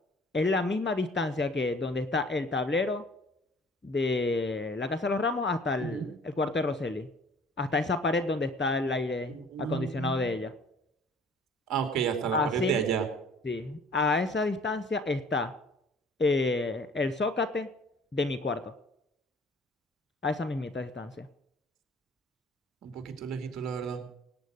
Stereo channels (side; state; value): both; normal; correlation 0.52